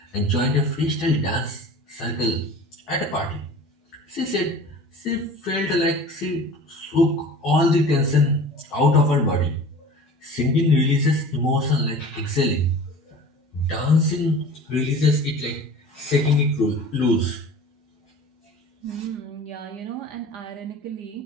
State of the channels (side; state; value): both; normal; correlation 0.40